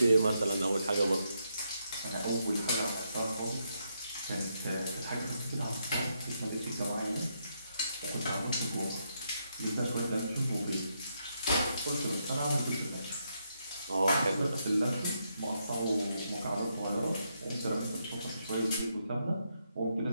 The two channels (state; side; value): inverted; both; correlation -0.79